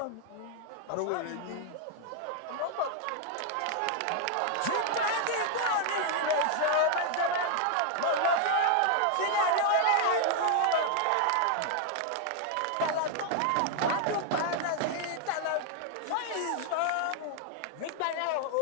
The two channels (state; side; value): different; both; correlation 0.00